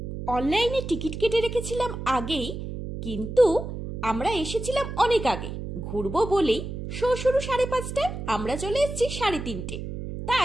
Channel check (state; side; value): noise; right; hum, 7 dB below the sound